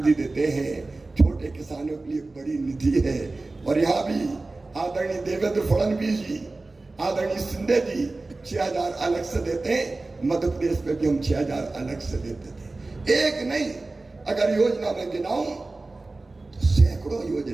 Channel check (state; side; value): quieter; left; 3.3 dB